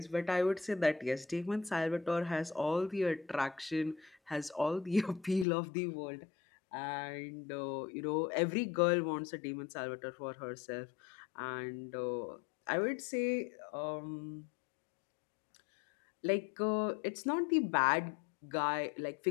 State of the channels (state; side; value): drops out; right; at 5.5 s